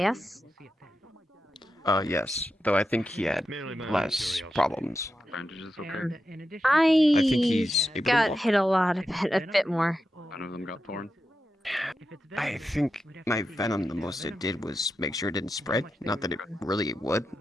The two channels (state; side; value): normal; both; correlation 0.89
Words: Yes, though I think he had less problems. I think he's able to got walk. hit a bit more. None of them got torn. I think my venom, the most it did was make sure it didn't spread. Not that it really would,